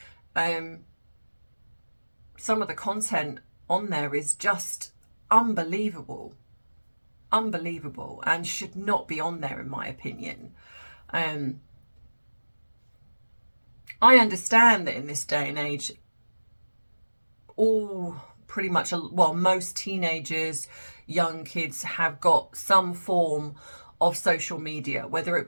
some of the content on there is just unbelievable, and should not be on there, in my opinion. I understand that in this day and age, pretty much, well, most teenagers, young kids have got some form of social media, whether it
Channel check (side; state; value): both; inverted; correlation -1.00